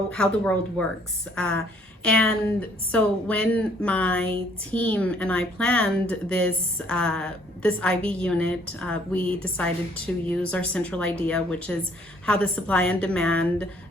the world works. And so when my team and I planned this IB unit, we decided to use our central idea, which is how the supply and demand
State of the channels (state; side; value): normal; both; correlation 0.62